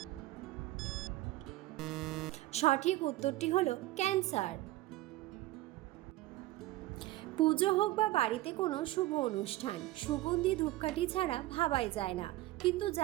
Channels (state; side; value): quieter; left; 17.0 dB